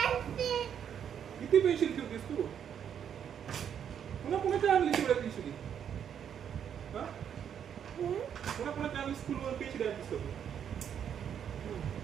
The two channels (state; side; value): quieter; left; 8.6 dB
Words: किती पेन्सिल ठेवतेस तू पुन्हा पुन्हा आणली तेवढ्या पेन्सिली हा पुन्हा पुन्हा आणली स्कूलवर पेन्सिल आणलीस का तू